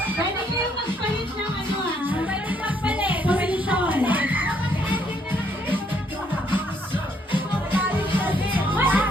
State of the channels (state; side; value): normal; both; correlation 0.70